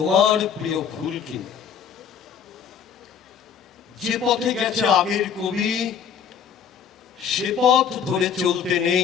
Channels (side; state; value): right; quieter; 7.4 dB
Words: প্রিয় ফুল কিনে। যে পথে গেছে আগের কবি সে পথ ধরে চলতে